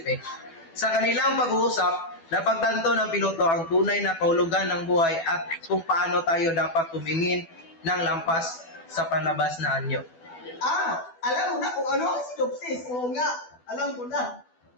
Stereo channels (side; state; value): right; late; 12 ms